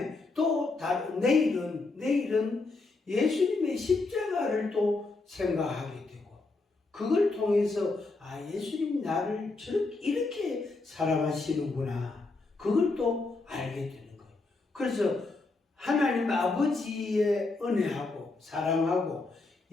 또 내일은 예수님의 십자가를 또 생각하게 되고 그걸 통해서 예수님이 나를 이렇게 사랑하시는구나. 그걸 또 알게 되는 거예요. 그래서 하나님 아버지의 은혜하고 사랑하고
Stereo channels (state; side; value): quieter; right; 3.5 dB